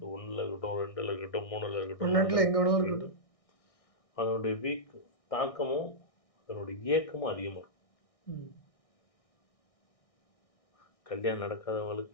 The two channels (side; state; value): right; late; 1.6 ms